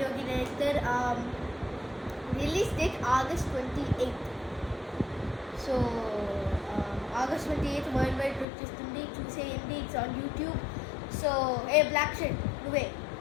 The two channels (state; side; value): drops out; right; at 8.5 s